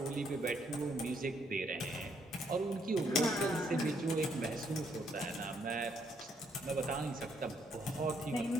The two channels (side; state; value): both; normal; correlation 0.72